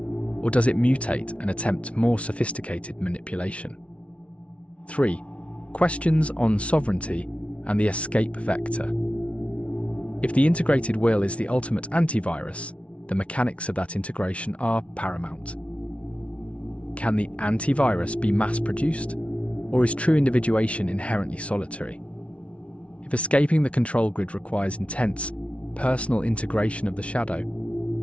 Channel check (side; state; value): right; late; 0.062 ms